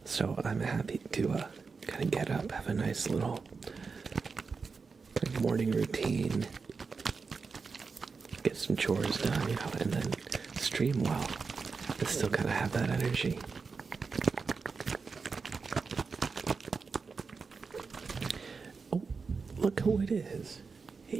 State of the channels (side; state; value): left; quieter; 4.8 dB